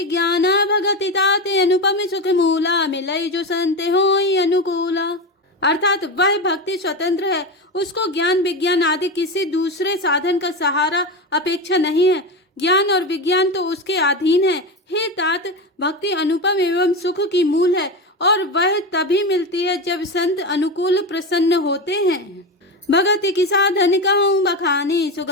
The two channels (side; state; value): both; normal; correlation 0.19